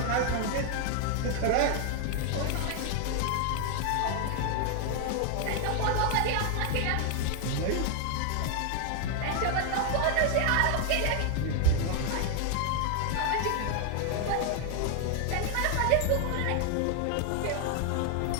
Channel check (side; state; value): both; different; correlation 0.00